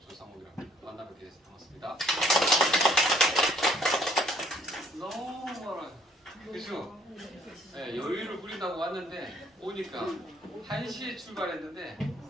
조상욱이라고 합니다. 만나뵙게 돼서 반갑습니다. 너무 멀어요. 그죠? 여유를 부린다고 왔는데 오니까 1시에 출발했는데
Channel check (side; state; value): both; normal; correlation 0.61